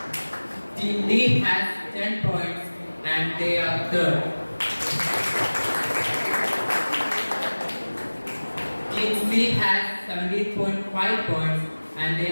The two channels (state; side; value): inverted; both; correlation -1.00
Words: Team D has 10 points and they are 3rd. Team C has 17.5 points and they